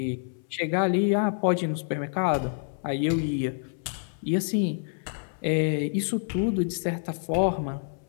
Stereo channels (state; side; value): silent; right; 60 dB below the other